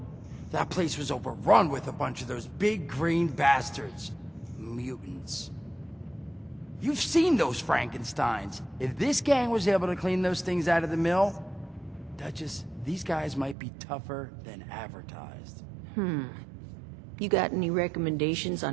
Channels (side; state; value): left; drops out; at 13.6 s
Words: That place was overrun with a bunch of those big green bastards. Mutants. You've seen those Frankensteins. If this gang was able to clean those things out of the mill, Duchess, these guys might be tougher than advertised. You got any recommendations